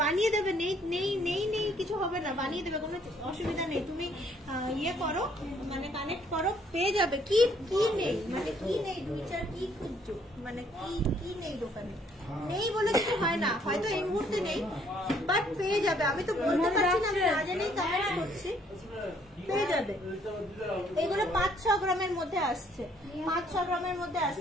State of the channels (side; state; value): both; normal; correlation 0.65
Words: বানিয়ে দেবে। নেই নেই নেই নেই কিছু হবে না, বানিয়ে দেবে, কোনো অসুবিধা নেই। তুমি ইয়ে করো, মানে কানেক্ট করো, পেয়ে যাবে। কি কি নেই মানে কি নেই, 2-4 কি খুঁজছো, মানে কি নেই দোকানে? নেই বলে কিছু হয় না, হয়তো এই মুহূর্তে নেই, বাট পেয়ে যাবে। আমি তো বলতে পারছি না, আমি না জেনেই কমেন্টস করছি, পেয়ে যাবে। এগুলো 5-6 গ্রামের মধ্যে আসছে, 5-6 গ্রামের মধ্যে